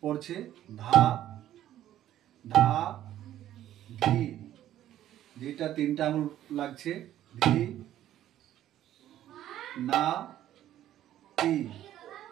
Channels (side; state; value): left; quieter; 12.4 dB